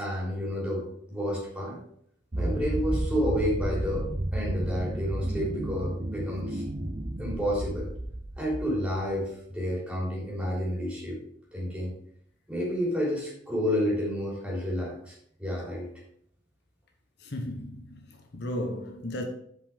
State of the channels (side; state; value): both; normal; correlation 0.69